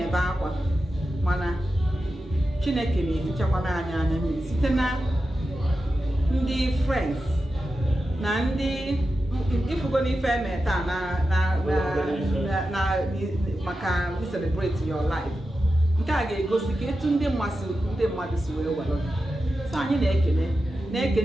akwa mana Chineke na-efichakwana anyị anya mmiri site na ndị friends na ndị ifugo n'ife eme taa na maka celebrate your life. Nke a ga-egosi ka etu ndị mmadụ si wee welụ. So anyị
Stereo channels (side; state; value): both; normal; correlation 0.91